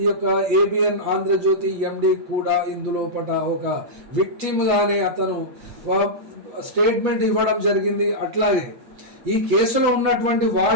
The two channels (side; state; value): left; late; 8.6 ms